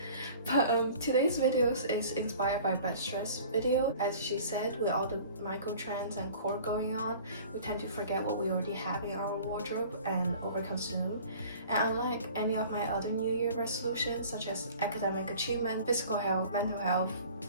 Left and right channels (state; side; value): inverted; both; correlation -0.46